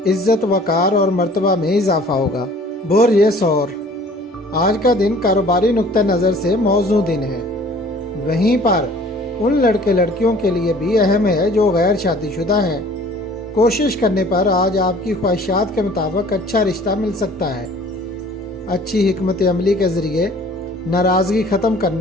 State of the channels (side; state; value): both; normal; correlation 0.51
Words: इज्जत वकार और मर्तबा में इजाफा होगा। बोर ये सौर, आज का दिन कारोबारी नुक्ता नज़र से मौजू दिन है। वहीं पर उन लड़के लड़कियों के लिए भी अहम है जो गैर शादीशुदा हैं। कोशिश करने पर आज आपकी ख्वाहिशात के मुताबिक अच्छा रिश्ता मिल सकता है। अच्छी हिकमत अमली के ज़रिए नाराज़गी ख़त्म